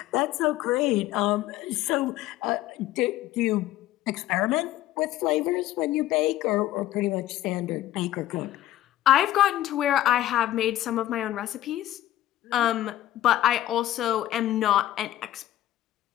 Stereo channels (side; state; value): right; quieter; 14.1 dB